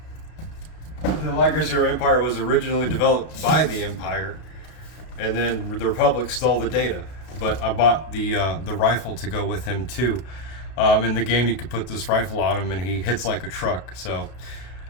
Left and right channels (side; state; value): right; late; 32 ms